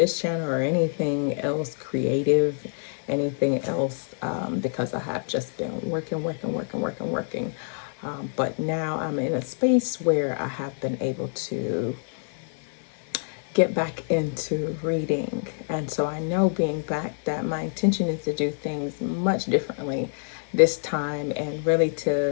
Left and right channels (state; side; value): silent; right; digital silence